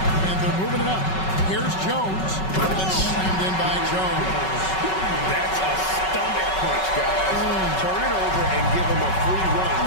And they're moving it up. Here's Jones. And slammed in by Jones. That's a stomach punch, guys. Turn it over and give him a free run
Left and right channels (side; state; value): right; late; 5.3 ms